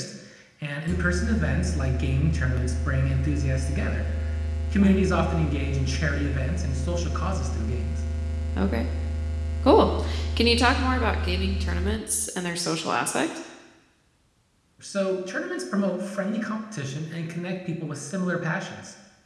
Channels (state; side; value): identical; both; correlation 1.00